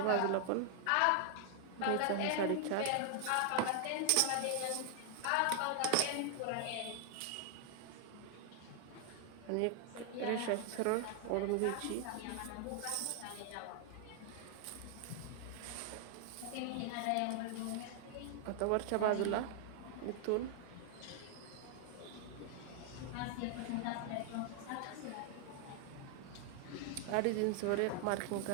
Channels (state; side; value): different; both; correlation 0.00